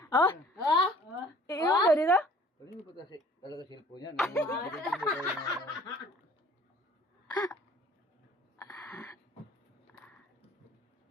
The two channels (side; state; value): both; normal; correlation 0.52